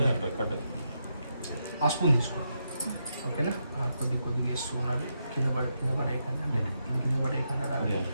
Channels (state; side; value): inverted; both; correlation -0.83